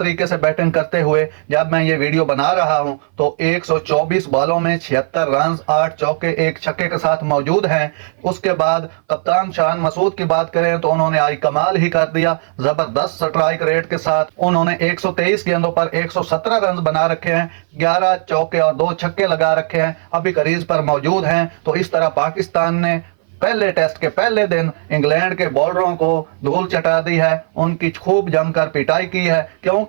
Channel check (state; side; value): silent; left; 59 dB below the other